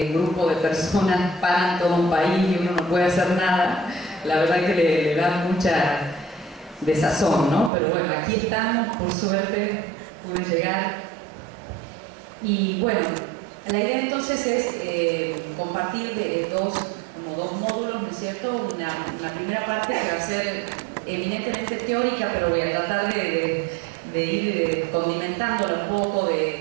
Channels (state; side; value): drops out; left; at 7.7 s